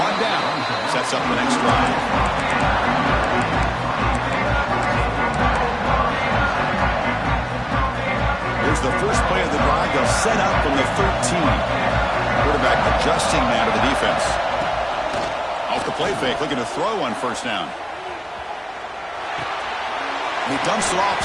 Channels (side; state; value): both; identical; correlation 1.00